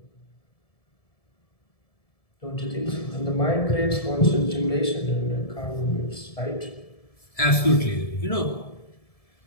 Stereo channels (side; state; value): right; late; 1.7 ms